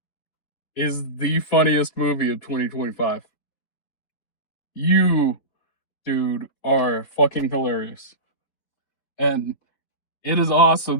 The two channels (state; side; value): late; right; 4.3 ms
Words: is the funniest movie of 2025. You, dude, are fucking hilarious. And it is